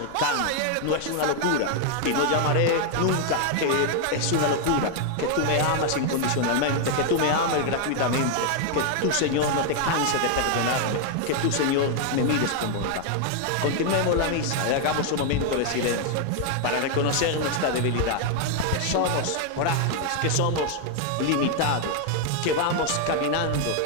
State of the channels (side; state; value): both; different; correlation 0.00